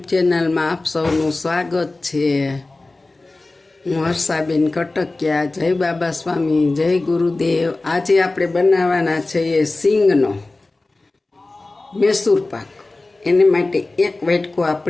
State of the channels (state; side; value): quieter; right; 3.1 dB